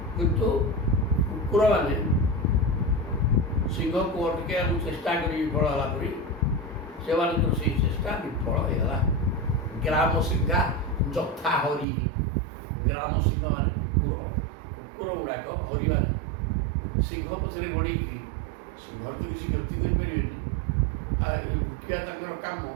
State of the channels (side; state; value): left; drops out; at 11.9 s